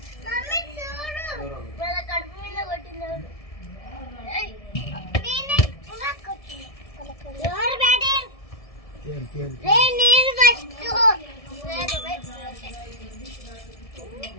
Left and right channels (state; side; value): late; right; 1.7 ms